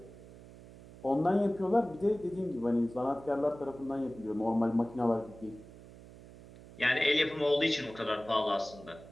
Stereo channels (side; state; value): right; noise; hum, 19 dB below the sound